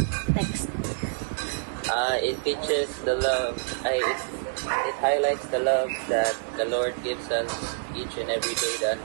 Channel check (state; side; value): silent; left; 56 dB below the other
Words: Next. It teaches the love. It highlights the love that the Lord gives us each and every day, the